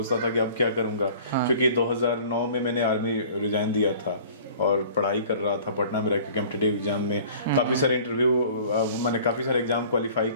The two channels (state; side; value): inverted; both; correlation -0.47